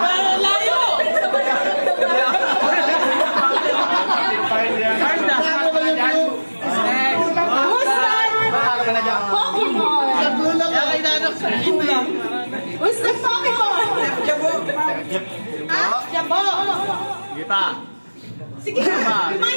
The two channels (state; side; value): inverted; both; correlation -1.00